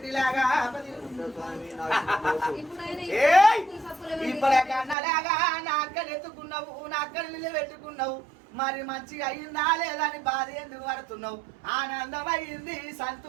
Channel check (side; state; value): left; drops out; at 5.0 s